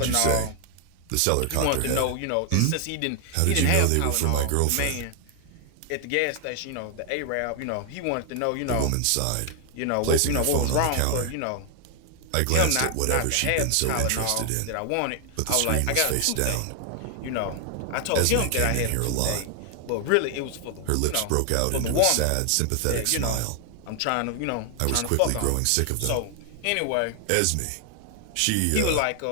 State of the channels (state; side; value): different; both; correlation 0.00